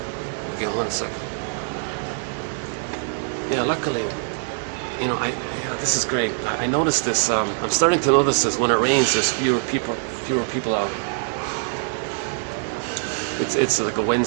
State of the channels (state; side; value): silent; left; 61 dB below the other